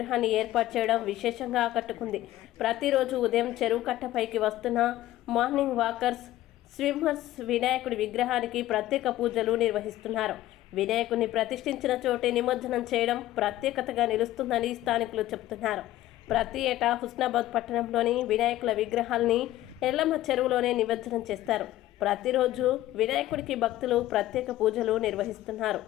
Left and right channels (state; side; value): quieter; right; 14.9 dB